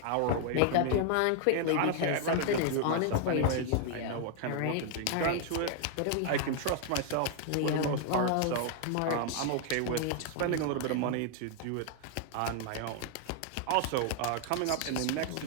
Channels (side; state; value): both; different; correlation 0.00